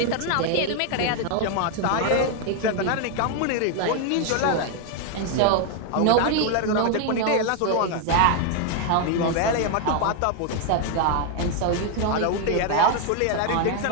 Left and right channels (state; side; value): different; both; correlation 0.01